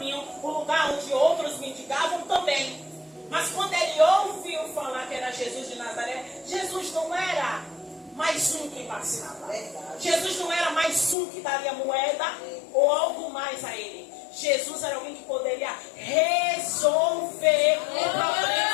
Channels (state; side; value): drops out; right; at 11.2 s